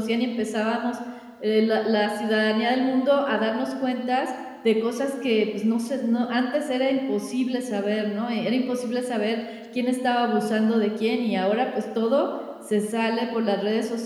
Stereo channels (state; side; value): identical; both; correlation 1.00